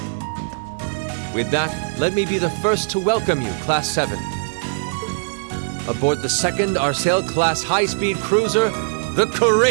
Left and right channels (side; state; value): left; silent; digital silence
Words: With that, let me be the first to welcome you, Class 7. Aboard the second Arsail-class high-speed cruiser, the